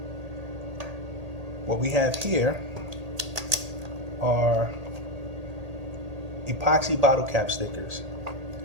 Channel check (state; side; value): late; left; 1.8 ms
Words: what we have here are epoxy bottle cap stickers.